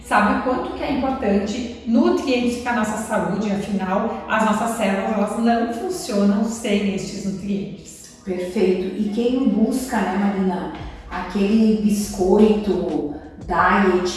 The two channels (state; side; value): identical; both; correlation 1.00